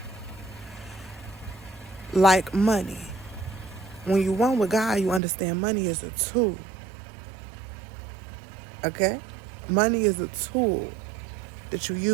Like money. When you're one with God, you understand money is a tool. Okay? Money is a tool that you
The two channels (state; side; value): drops out; left; at 5.2 s